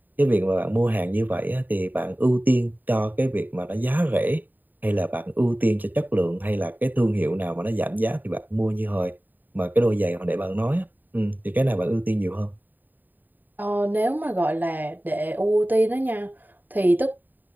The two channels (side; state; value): left; late; 0.089 ms